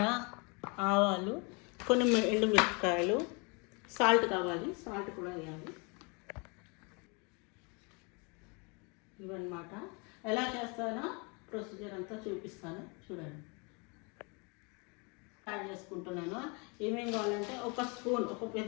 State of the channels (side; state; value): right; quieter; 31.6 dB